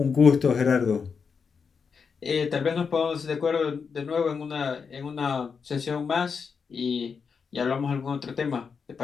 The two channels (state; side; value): quieter; right; 5.8 dB